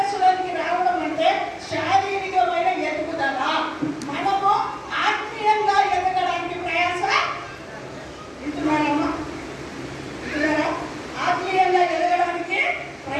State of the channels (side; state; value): both; identical; correlation 1.00